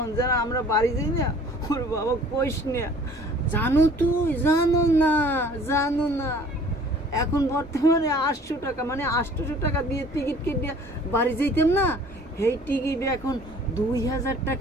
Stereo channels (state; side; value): normal; both; correlation 0.51